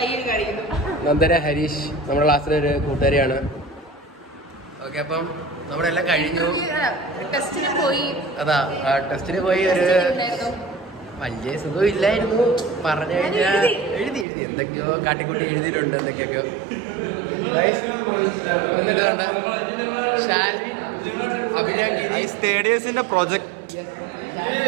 നന്ദന ഹരീഷ് നമ്മുടെ ക്ലാസ്സിലെ ഒരു കൂട്ടുകാരിയാണ്. ഓക്കെ, അപ്പം നമ്മുടെ എല്ലാം കഴിഞ്ഞു. അതാ ടെസ്റ്റിന് പോയി ഒരു വലിയ സുഖം ഇല്ലായിരുന്നു. പറഞ്ഞു കഴിഞ്ഞാൽ എഴുതി എന്തൊക്കെയോ കാട്ടിക്കൂട്ടി എഴുതിയിട്ടുണ്ട്. എന്തൊക്കെയൊക്കെയോ തേർഡ് ഇയേഴ്സിന്റെ പ്രോജക്ട്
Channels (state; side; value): drops out; left; at 14.2 s